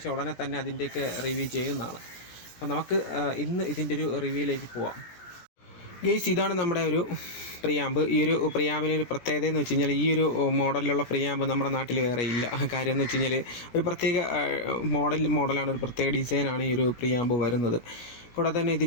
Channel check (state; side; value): late; right; 17 ms